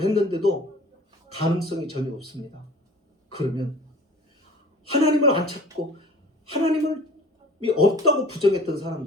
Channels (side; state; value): both; normal; correlation 0.45